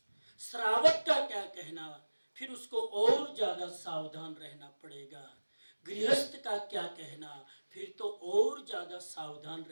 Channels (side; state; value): both; inverted; correlation -1.00